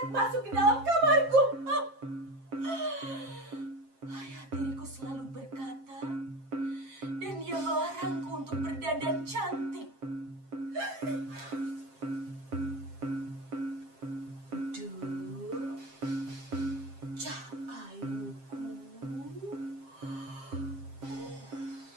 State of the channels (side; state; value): left; late; 7.5 ms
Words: masuk ke dalam kamarku. Ayah tiriku selalu berkata, dan dia melarangku untuk berdandan cantik. Duh, cah ayuku.